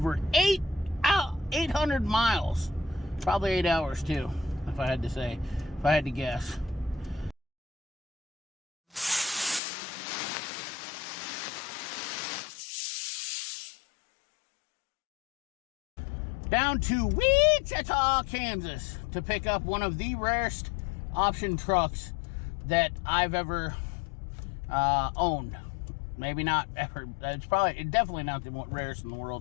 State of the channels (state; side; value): drops out; right; at 9.6 s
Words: 800 miles. Probably 8 hours, too, if I had to say, if I had to guess. Down to Wichita, Kansas to pick up one of the rarest option trucks that I've ever owned. Maybe not ever. It's definitely not the rarest in the